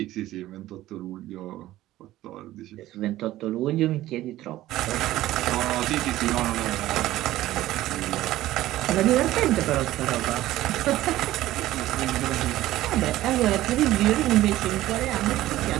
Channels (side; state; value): left; quieter; 15.3 dB